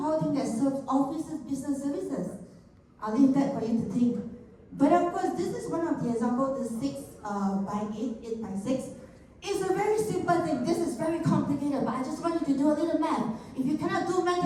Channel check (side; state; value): both; identical; correlation 1.00